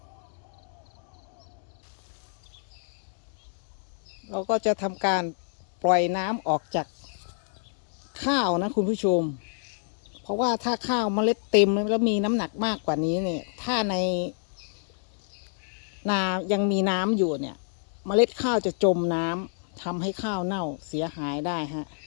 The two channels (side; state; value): right; silent; digital silence